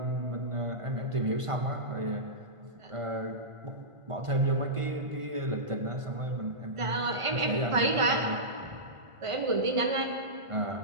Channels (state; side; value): late; left; 1.5 ms